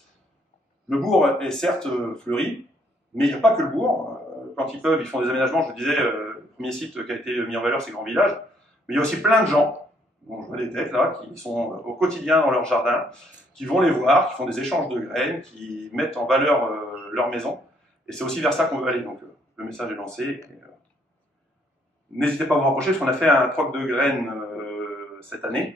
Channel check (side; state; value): both; normal; correlation 0.68